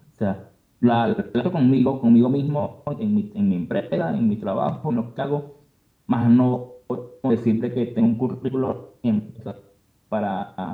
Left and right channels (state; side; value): identical; both; correlation 1.00